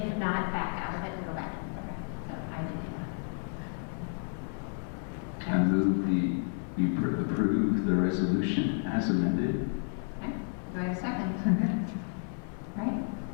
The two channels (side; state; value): right; silent; 57 dB below the other